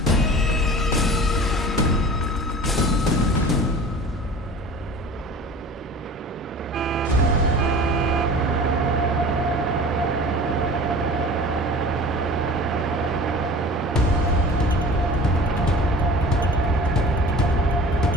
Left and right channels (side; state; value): both; normal; correlation 0.41